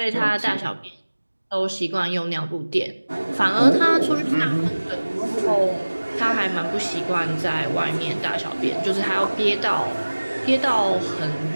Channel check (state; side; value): inverted; both; correlation -1.00